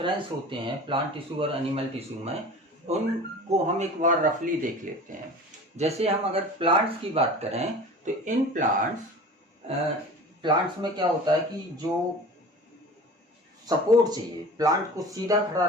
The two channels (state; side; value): normal; both; correlation 0.38